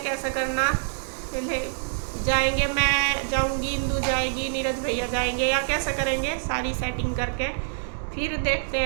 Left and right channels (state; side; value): silent; left; digital silence